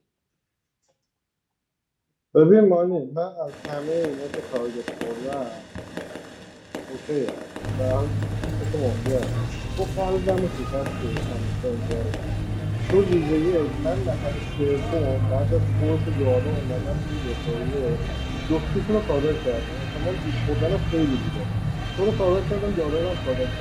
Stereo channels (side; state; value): both; identical; correlation 1.00